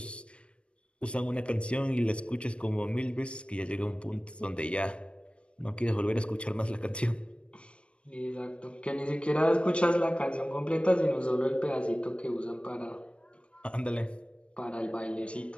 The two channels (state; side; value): late; right; 0.059 ms